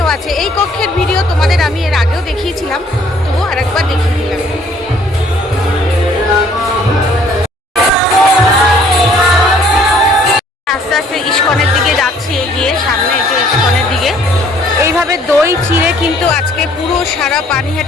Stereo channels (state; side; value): normal; both; correlation 0.60